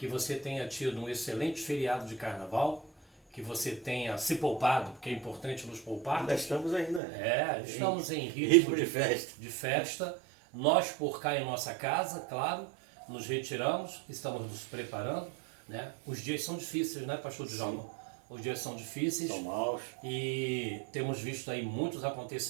você tenha tido um excelente feriado de carnaval, que você tenha se poupado, porque é importante nos poupar. Ainda estamos ainda. Estamos em ritmo de festa. Nós, por cá em nossa casa, claro, nos retiramos, estamos nos preparando, né? Os dias são difíceis, né, pastor Djalma? Os dias são difíceis. São maus. E temos visto aí muitos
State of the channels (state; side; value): drops out; left; at 7.0 s